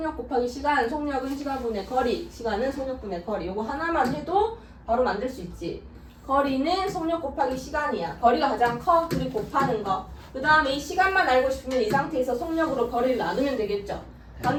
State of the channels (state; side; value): identical; both; correlation 1.00